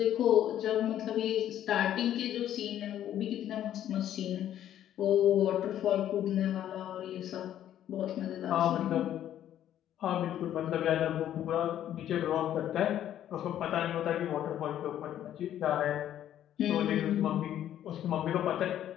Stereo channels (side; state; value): right; quieter; 11.3 dB